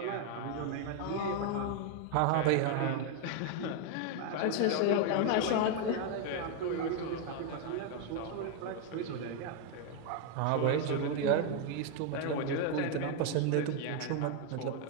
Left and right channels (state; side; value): different; both; correlation 0.01